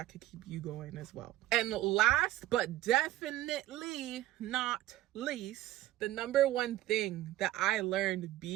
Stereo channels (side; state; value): left; quieter; 14.8 dB